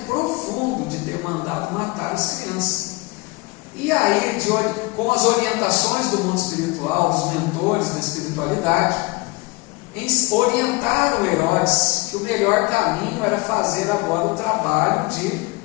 profundo de ter mandado matar as crianças. E aí, com as orientações do mundo espiritual, os mentores da espiritualidade, orientaram Herodes que o melhor caminho era fazer agora o trabalho de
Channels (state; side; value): quieter; right; 24.2 dB